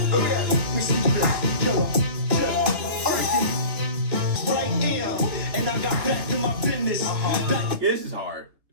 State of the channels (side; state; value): left; late; 3.4 ms